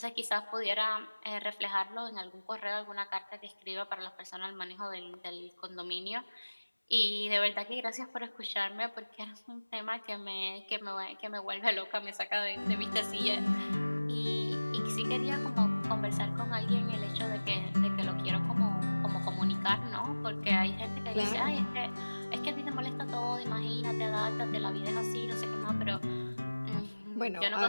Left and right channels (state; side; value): inverted; both; correlation -1.00